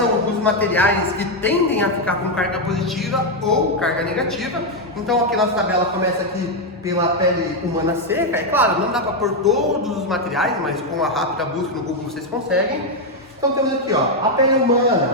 os materiais que tendem a ficar com carga positiva ou carga negativa. Então aqui nossa tabela começa aqui pela pele humana seca. É claro, não dá para pôr todos os materiais, mas com uma rápida busca no Google vocês conseguem. Então temos aqui ó, a pele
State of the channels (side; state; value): both; normal; correlation 0.03